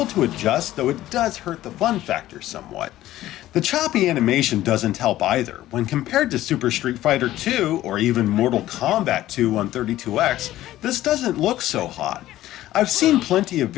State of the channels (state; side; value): quieter; right; 14.6 dB